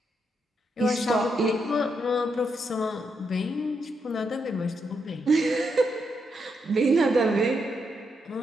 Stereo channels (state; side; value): normal; both; correlation 0.81